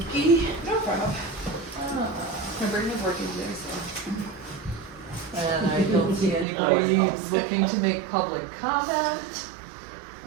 Kiki? No problem. My brain is working today, so. And I don't see anybody looking to make public comment.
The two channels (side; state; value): left; drops out; at 6.5 s